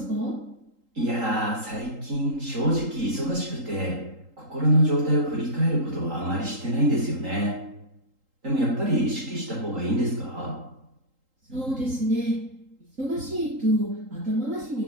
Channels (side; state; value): left; late; 3.8 ms